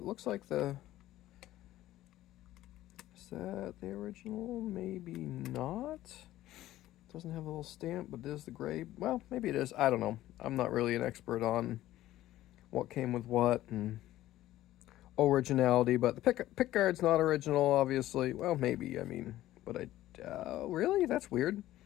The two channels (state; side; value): quieter; right; 14.7 dB